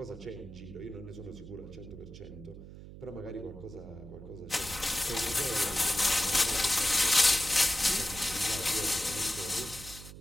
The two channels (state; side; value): noise; right; hum, 15 dB below the sound